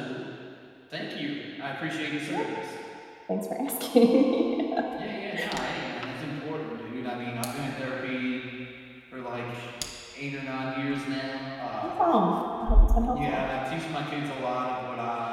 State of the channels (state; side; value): identical; both; correlation 1.00